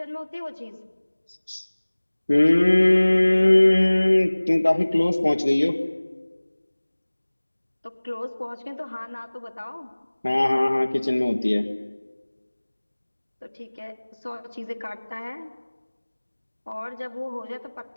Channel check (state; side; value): inverted; both; correlation -1.00